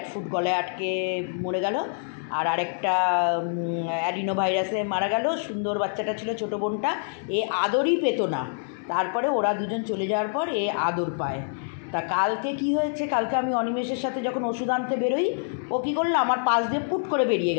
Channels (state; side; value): silent; right; digital silence